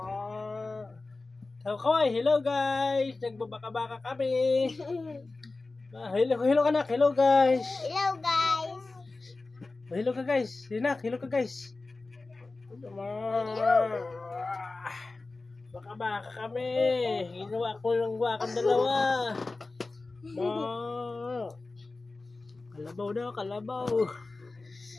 Kaway, hello guys. Nagbabaka-baka kami. Hello anak, hello guys. Hello guys. Hello ka guys. Hinak, hello ka guys. Baka-baka kami. Ginawa ko lang wakang dalawa. Kalabaw daw, kalabaw.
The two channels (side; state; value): right; quieter; 3.5 dB